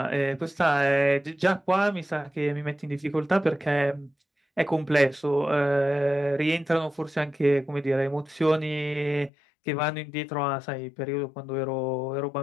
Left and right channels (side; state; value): right; drops out; at 9.3 s